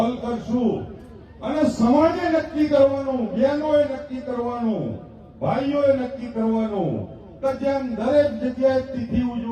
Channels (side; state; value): both; identical; correlation 1.00